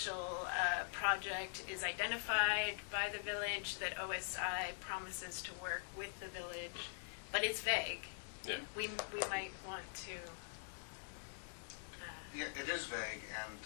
project is identified by the village that OSI promises to work with the village, but it's vague. Yeah. We might want to. Yeah, it is vague, and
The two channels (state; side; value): silent; right; digital silence